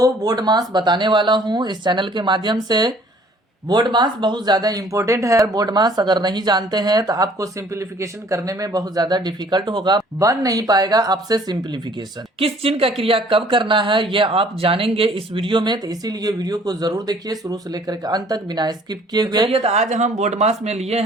बोर्ड मास बताने वाला हूं इस चैनल के माध्यम से। बोर्ड मास बहुत ज़्यादा इंपॉर्टेंट है। बोर्ड मास अगर नहीं जानते हैं तो आपको सिंप्लीफिकेशन करने में बहुत ज़्यादा डिफिकल्ट होगा, बन नहीं पाएगा आपसे सिंप्लीफिकेशन। किस चिन्ह का क्रिया कब करना है ये आप जानेंगे इस वीडियो में, तो इसीलिए वीडियो को जरूर देखिए शुरू से लेकर के अंत तक बिना स्किप किए हुए। तो आज हम बोर्ड मास में लिए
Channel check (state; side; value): normal; both; correlation 0.56